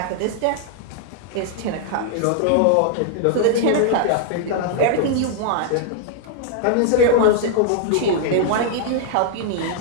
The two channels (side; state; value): both; different; correlation -0.01